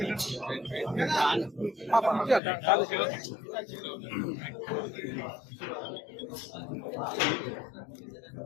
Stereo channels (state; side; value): drops out; right; at 2.4 s